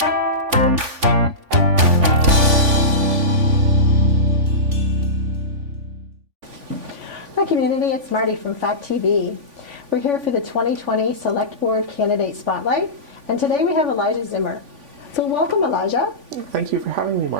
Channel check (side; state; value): left; late; 3.5 ms